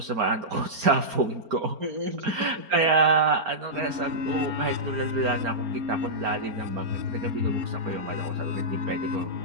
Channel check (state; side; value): late; left; 4.4 ms